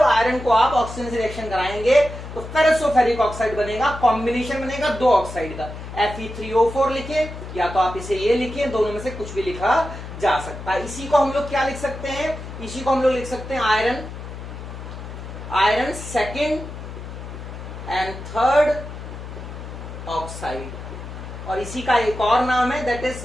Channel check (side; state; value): left; noise; hum, 10 dB below the sound